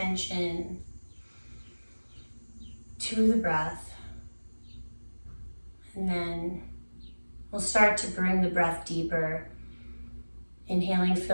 to the breath. And then we'll start to bring the breath deeper. Inhaling,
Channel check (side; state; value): both; inverted; correlation -1.00